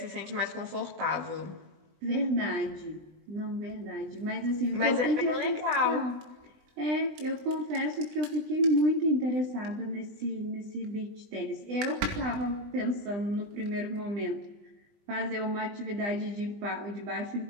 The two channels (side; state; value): left; late; 20 ms